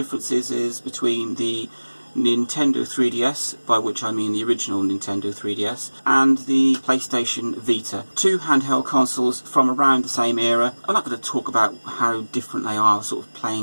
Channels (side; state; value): both; inverted; correlation -1.00